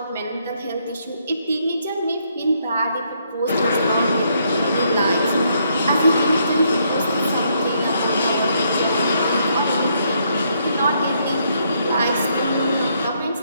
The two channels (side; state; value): both; inverted; correlation -0.73